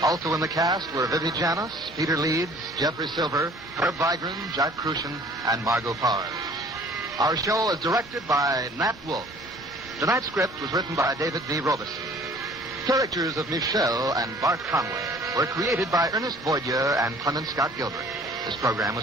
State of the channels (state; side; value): normal; both; correlation 0.52